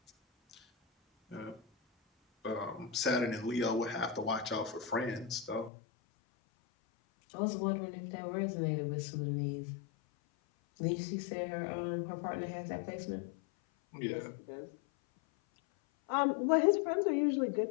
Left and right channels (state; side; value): drops out; right; at 5.7 s